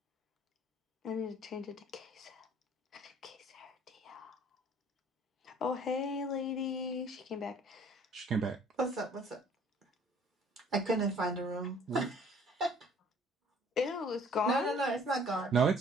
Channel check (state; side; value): normal; both; correlation 0.55